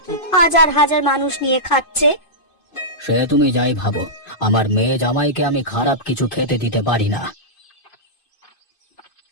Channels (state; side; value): late; right; 2.5 ms